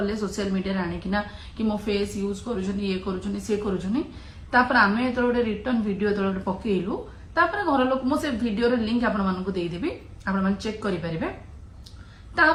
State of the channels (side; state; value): both; identical; correlation 1.00